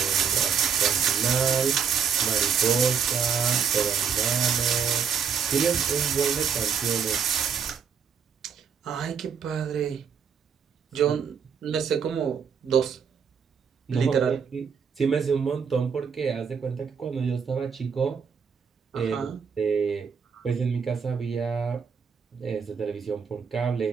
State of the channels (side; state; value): left; quieter; 6.8 dB